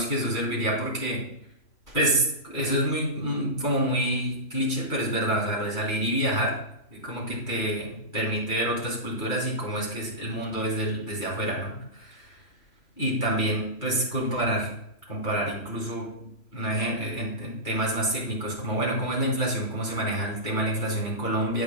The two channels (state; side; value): late; right; 3.0 ms